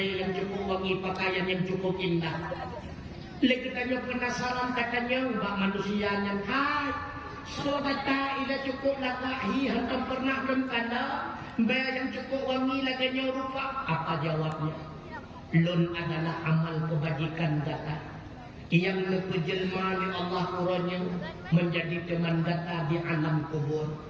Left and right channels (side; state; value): both; identical; correlation 1.00